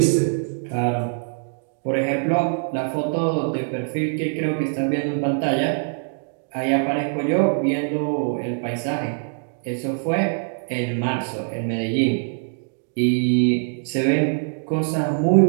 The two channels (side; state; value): left; silent; digital silence